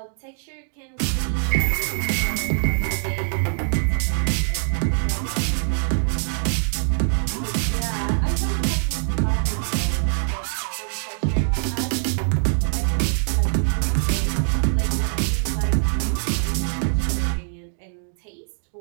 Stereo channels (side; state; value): left; silent; digital silence